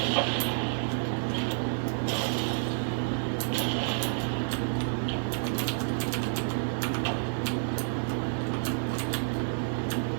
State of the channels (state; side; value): silent; left; digital silence